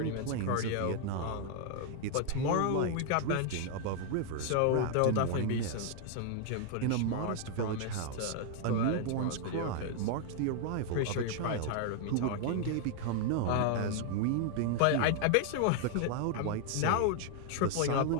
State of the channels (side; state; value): both; different; correlation 0.00